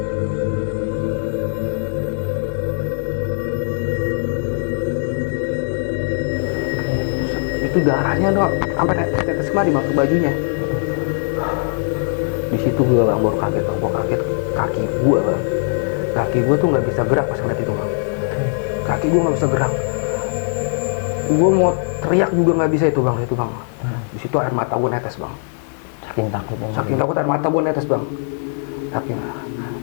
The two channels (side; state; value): right; silent; digital silence